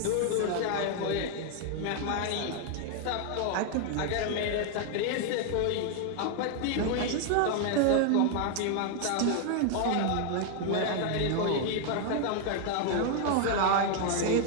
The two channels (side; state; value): both; different; correlation 0.00